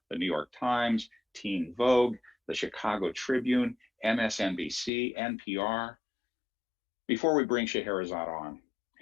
the New York Times, Teen Vogue, the Chicago Tribune, MSNBC, NPR. Before we bring Scheherazade on,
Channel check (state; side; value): drops out; right; at 4.9 s